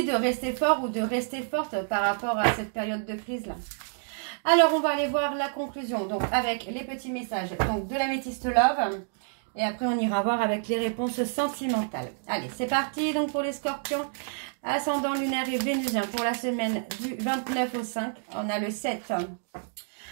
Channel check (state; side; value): silent; left; digital silence